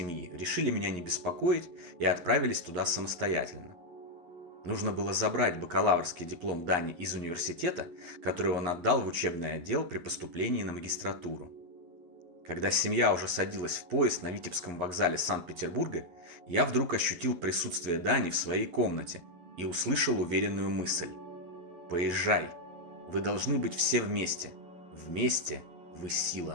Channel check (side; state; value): left; late; 11 ms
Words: решили меня не беспокоить и отправились туда самостоятельно. Нужно было забрать бакалаврский диплом Дани из университета, который он отдал в учебный отдел при поступлении на магистратуру. Когда семья уже садилась в поезд на Витебском вокзале Санкт-Петербурга, я вдруг ощутил присутствие Дани в своей комнате и услышал уверенную мысль: «Поезжай, вы должны быть все вместе, вместе вы